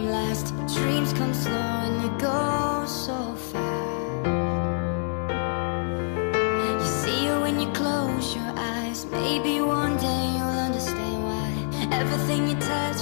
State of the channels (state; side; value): silent; right; 61 dB below the other